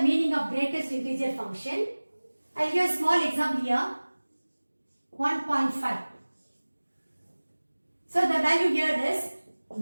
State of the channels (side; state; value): both; inverted; correlation -1.00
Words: meaning of greatest integer function. I'll give a small example here. 1.5. So the value here is